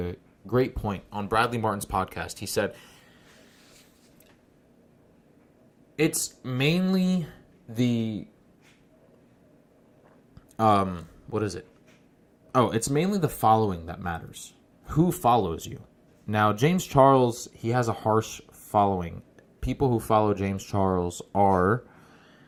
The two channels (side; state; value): both; identical; correlation 1.00